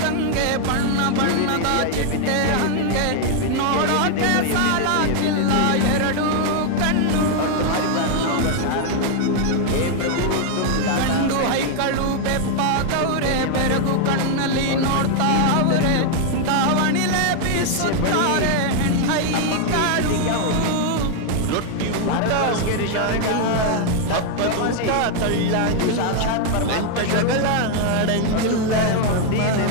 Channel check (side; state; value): both; different; correlation 0.00